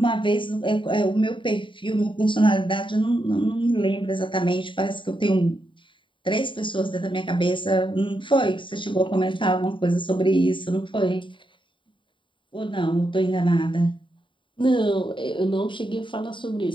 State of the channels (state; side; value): late; right; 0.24 ms